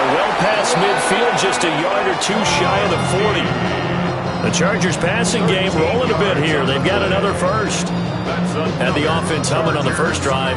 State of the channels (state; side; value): identical; both; correlation 1.00